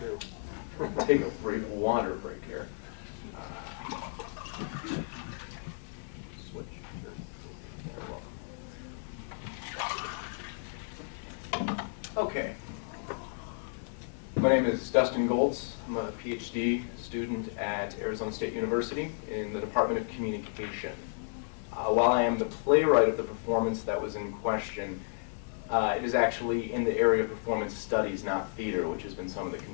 Take a break, water break here. Switch. Okay. My name is Dustin Goltz. I'm a PhD student at Arizona State University in the Department of Communication. While I am the playwright of the performance that was in question, it is actually in the area of performance studies, not theater, which has been some of the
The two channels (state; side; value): silent; right; digital silence